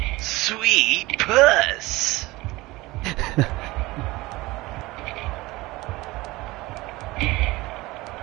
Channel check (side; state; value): left; quieter; 20.5 dB